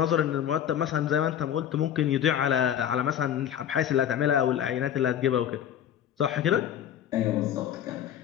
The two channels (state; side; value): quieter; right; 9.9 dB